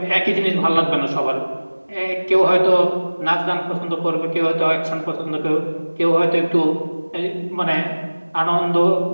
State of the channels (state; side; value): inverted; both; correlation -1.00